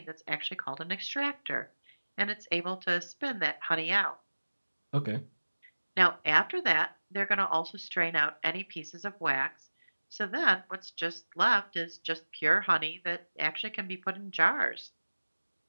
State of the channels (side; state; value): both; inverted; correlation -1.00